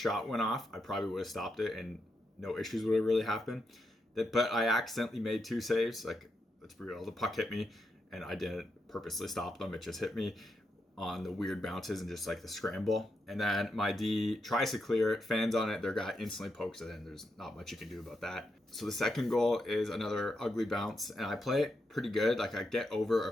shot went off, I probably would have stopped it and no issues would have really happened. But I accidentally made 2 saves. Like, let's be real, the puck hit me and I didn't purposely stop them. It just hit me on the weird bounces and just like the scramble. And then my D tries to clear it, fans on it, their guy instantly pokes it in. There's not much you can do about that. So the second goal is another ugly bounce, and I play it pretty good. Like, I get over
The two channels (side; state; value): both; normal; correlation 0.84